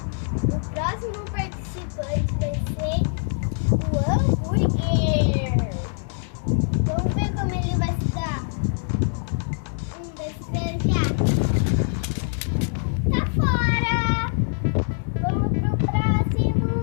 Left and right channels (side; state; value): right; silent; 58 dB below the other